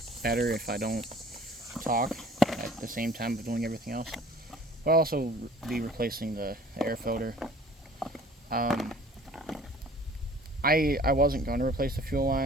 better if I don't talk at the same time of doing everything else. But I'll also be replacing the air filter. I wasn't going to replace the fuel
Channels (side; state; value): both; normal; correlation 0.51